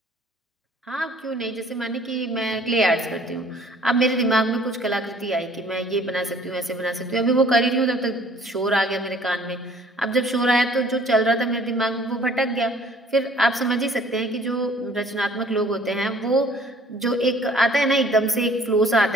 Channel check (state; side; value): normal; both; correlation 0.55